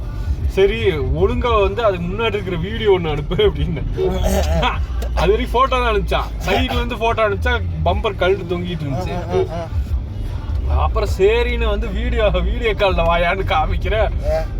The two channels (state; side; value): identical; both; correlation 1.00